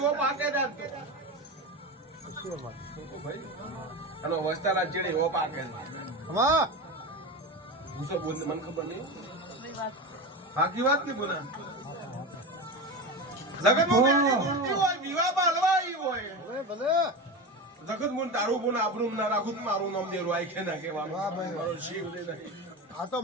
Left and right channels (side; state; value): both; normal; correlation 0.23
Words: પાકે દાતો ભાઈ અને વસ્તારા ચીડી હો પાકે હા હું તો બોલ મને ખબર નહીં બાકી વાત નહીં બોલા જગત મોની હોય વિવાહ બાલવાઈ હોય ભલે જગત મોન તારું બોન આપણું ના રાખું મારું નામ દેરું આઈ કે ના કહેવાનું મારો શિવ દે નહીં આ તો